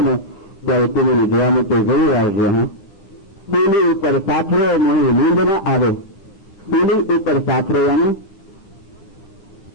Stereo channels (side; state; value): right; late; 9.4 ms